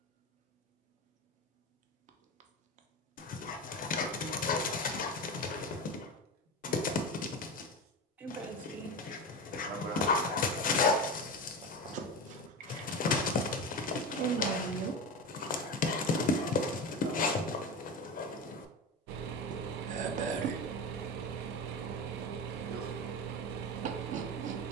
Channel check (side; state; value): both; normal; correlation 0.24